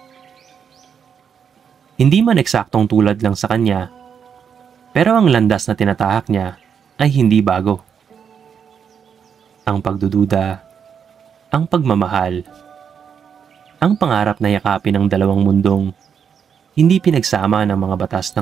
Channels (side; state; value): left; quieter; 7.3 dB